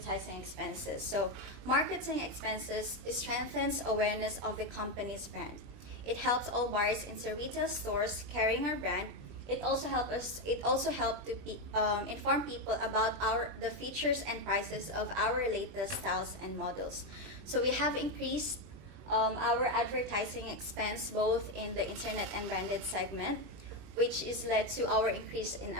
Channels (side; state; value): left; late; 20 ms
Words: expenses. So marketing expenses strengthens awareness of the company's brand. It helps all buyers into retail stores carrying our brand. It also helps to inform people about the features and prices of our latest styles and models. So we have increased our advertising expense both in the internet and branded segment, which is led to our increase in